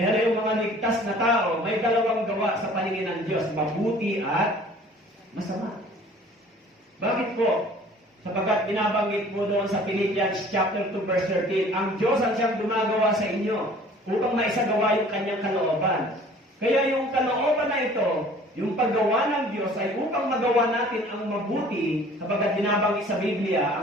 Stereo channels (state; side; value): normal; both; correlation 0.50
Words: yung mga ligtas na tao, may dalawang gawa sa paningin ng Diyos. Mabuti at masama. Bakit po? Sapagkat binabanggit po doon sa Philippians chapter 2 verse 13, ang Diyos ang siyang gumagawa sa inyo upang maisagawa yung kanyang kalooban. Kaya yung kalooban na ito, yung paggawa ng Diyos ay upang magawa natin ang mabuti, sapagkat binabanggit sa Biblia,